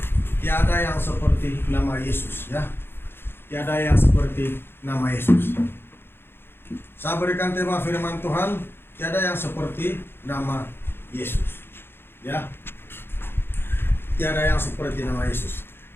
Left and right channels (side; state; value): right; late; 0.11 ms